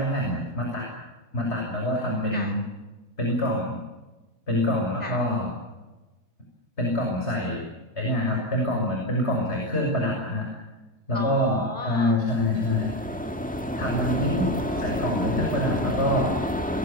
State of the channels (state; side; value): normal; both; correlation 0.12